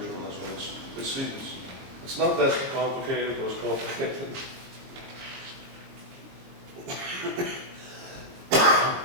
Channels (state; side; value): late; left; 22 ms